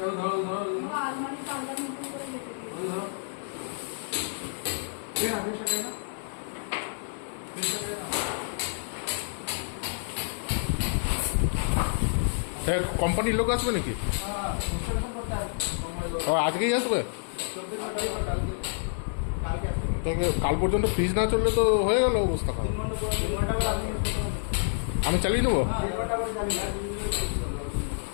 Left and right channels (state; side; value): silent; right; digital silence